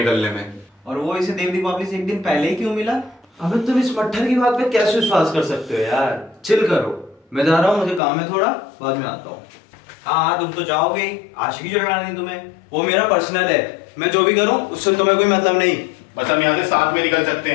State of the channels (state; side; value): drops out; right; at 8.0 s